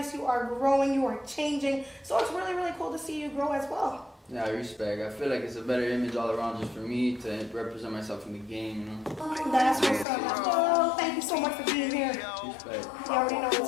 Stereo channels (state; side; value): drops out; right; at 10.1 s